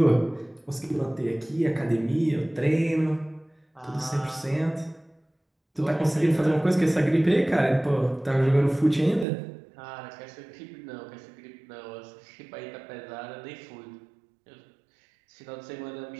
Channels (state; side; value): drops out; left; at 9.2 s